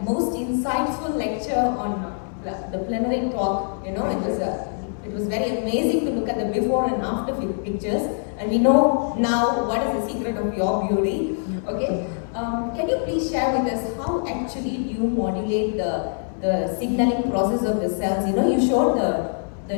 most insightful lecture on the plenary talk. It was very amazing to look at the before and after pictures, and we know now what is the secret of your beauty. Okay, can you please share with us how actually you modulate the signaling process of the cells? You showed the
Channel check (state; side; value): silent; right; digital silence